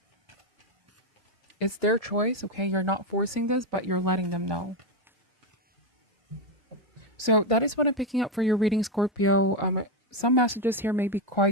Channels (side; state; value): both; normal; correlation 0.08